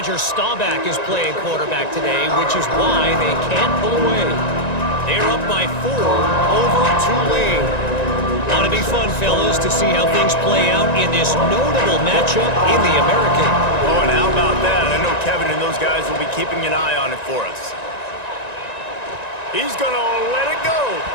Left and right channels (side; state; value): right; late; 1.9 ms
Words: Staubach is playing quarterback today, which is why they can't pull away. They're up by 4 over Tulane. Ought to be fun, fellas, to see how things play out in this notable matchup in the American. Oh, and how about that? I know Kevin and those guys will be keeping an eye on it for us. He's going to let it go.